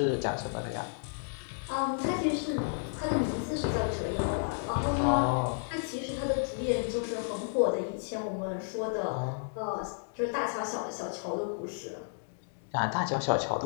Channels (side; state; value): right; silent; digital silence